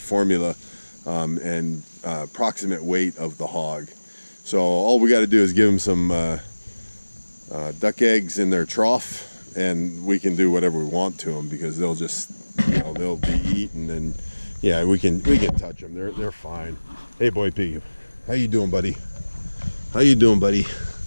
and approximate weight of the hog. So all we got to do is give them some duck eggs in their trough, and we can do whatever we want to them, because they'll just, they'll be eaten, and yeah, we can touch them. They're fine. Hey, boy pig, how you doing, buddy? How you doing, buddy?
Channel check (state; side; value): inverted; both; correlation -1.00